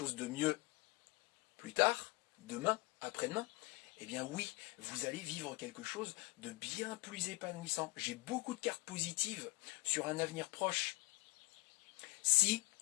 de mieux plus tard, demain, après-demain, eh bien oui, vous allez vivre quelque chose de bien plus épanouissant. J'ai beaucoup de cartes positives sur un avenir proche. Si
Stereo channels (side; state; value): right; quieter; 24.8 dB